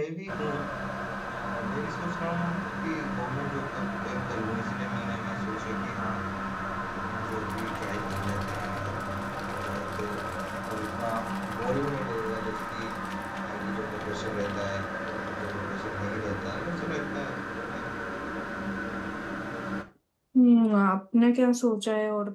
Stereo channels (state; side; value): identical; both; correlation 1.00